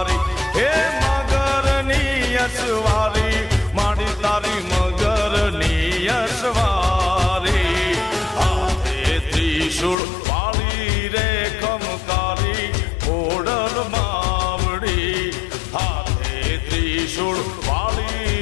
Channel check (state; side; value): drops out; right; at 10.0 s